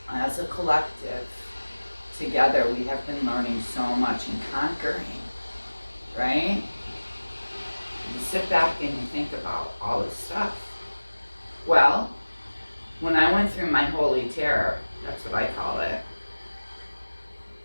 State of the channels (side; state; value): both; inverted; correlation -1.00